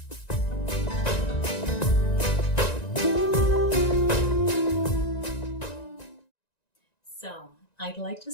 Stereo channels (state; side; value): late; right; 1.9 ms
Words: So I'd like to